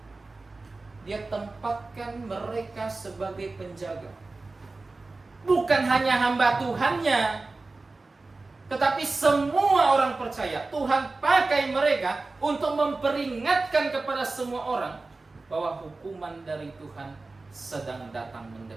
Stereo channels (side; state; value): left; quieter; 3.5 dB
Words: Dia tempatkan mereka sebagai penjaga. Bukan hanya hamba Tuhannya, tetapi semua orang percaya. Tuhan pakai mereka untuk memperingatkan kepada semua orang bahwa hukuman dari Tuhan sedang datang